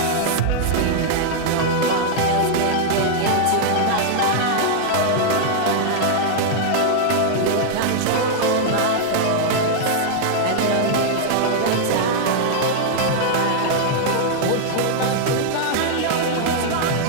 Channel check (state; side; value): different; both; correlation -0.01